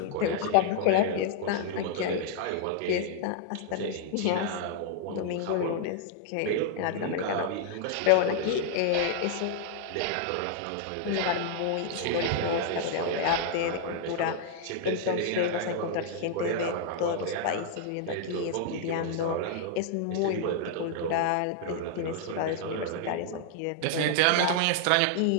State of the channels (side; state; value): both; different; correlation -0.01